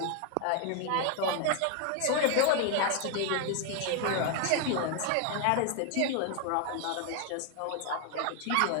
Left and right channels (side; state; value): both; different; correlation 0.00